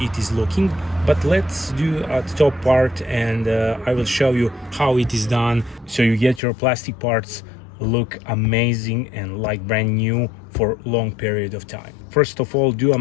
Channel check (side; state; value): right; drops out; at 6.4 s